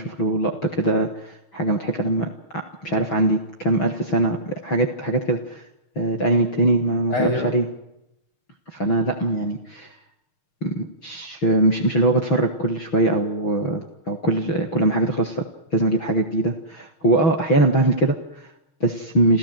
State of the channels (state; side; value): late; right; 6.4 ms